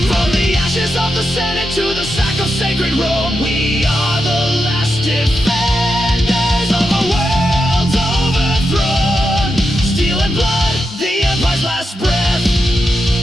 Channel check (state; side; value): normal; both; correlation 0.87